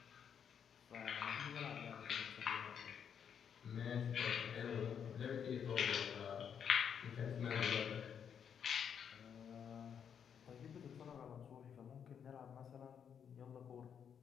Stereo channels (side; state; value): right; quieter; 7.8 dB